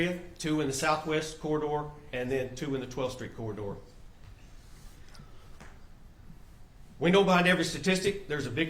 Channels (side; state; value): both; identical; correlation 1.00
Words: 2 in the southwest corridor, and then 2 in the 12th Street corridor. We know behind every statistic there's a